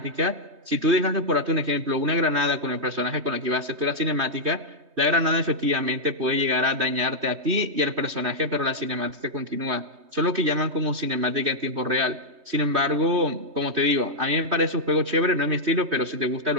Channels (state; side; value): late; left; 3.2 ms